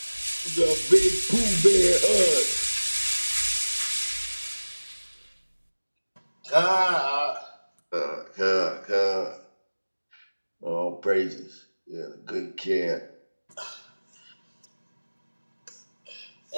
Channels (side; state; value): both; inverted; correlation -1.00